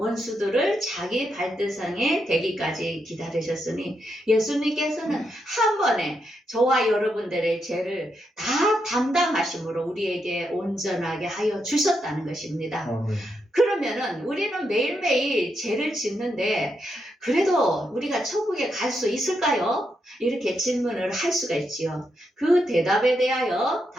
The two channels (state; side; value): normal; both; correlation 0.82